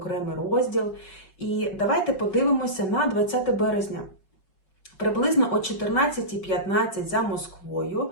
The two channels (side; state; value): right; late; 5.3 ms